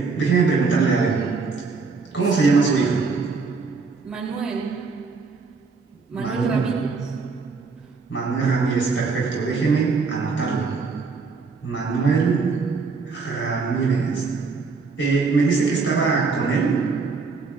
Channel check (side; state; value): left; quieter; 4.5 dB